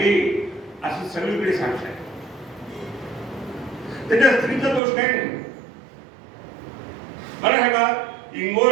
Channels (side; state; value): left; drops out; at 4.8 s